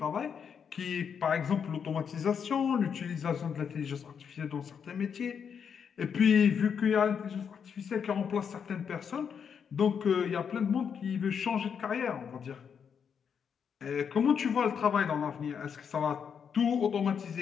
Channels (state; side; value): quieter; right; 7.1 dB